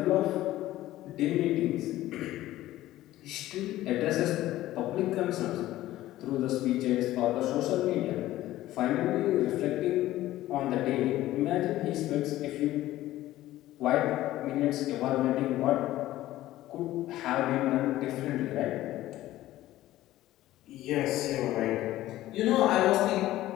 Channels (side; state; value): right; quieter; 15.2 dB